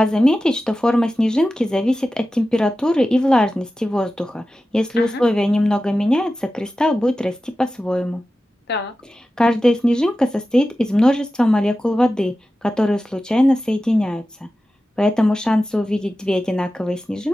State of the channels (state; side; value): normal; both; correlation 0.94